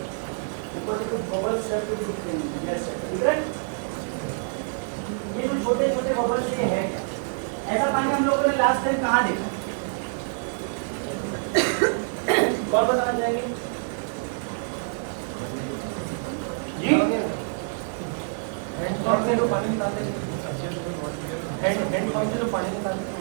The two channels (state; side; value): silent; left; digital silence